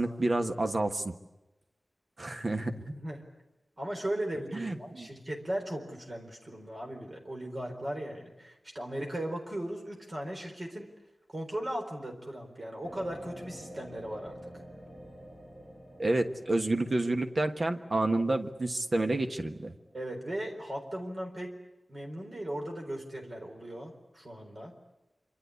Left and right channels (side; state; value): both; normal; correlation 0.97